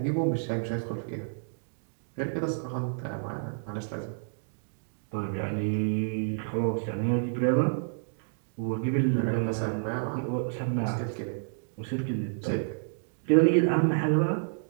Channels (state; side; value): silent; left; digital silence